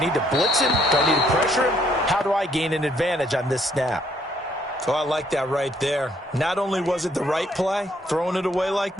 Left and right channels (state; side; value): normal; both; correlation 0.68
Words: to blitz him? Do I need to pressure him? How do I gain an advantage on this snap? So I like that right there. Not only was it the right play, throwing it away like